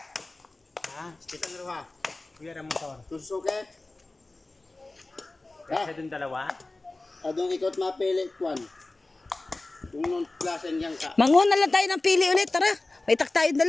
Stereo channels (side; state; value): right; quieter; 3.0 dB